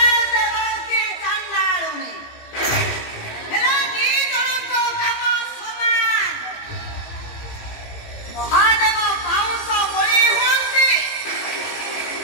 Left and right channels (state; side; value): late; right; 18 ms